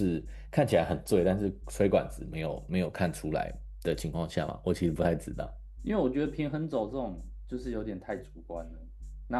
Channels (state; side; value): identical; both; correlation 1.00